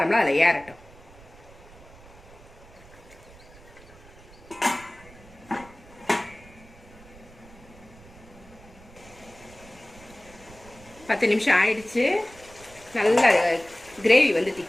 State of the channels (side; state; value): right; noise; rumble, 22 dB below the sound